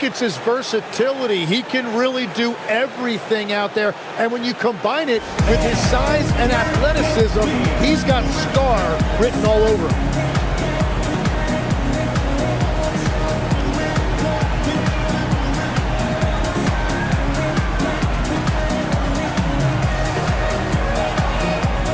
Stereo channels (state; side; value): identical; both; correlation 1.00